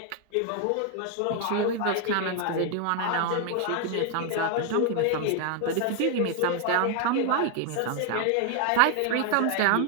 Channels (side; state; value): both; different; correlation 0.00